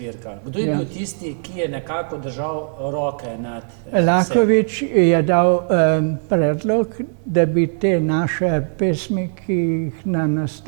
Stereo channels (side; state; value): left; silent; digital silence